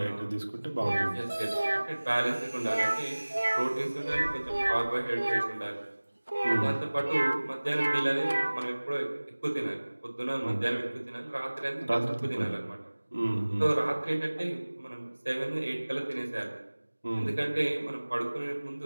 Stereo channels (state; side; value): inverted; both; correlation -1.00